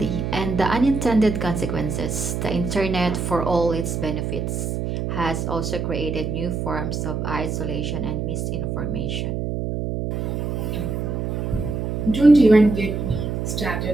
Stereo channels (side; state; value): right; noise; hum, 2 dB below the sound